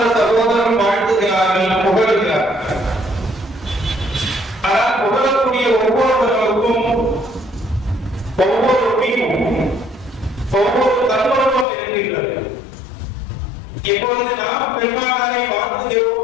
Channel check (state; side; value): drops out; right; at 11.7 s